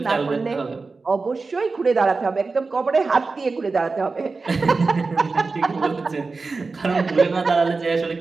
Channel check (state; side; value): quieter; left; 4.0 dB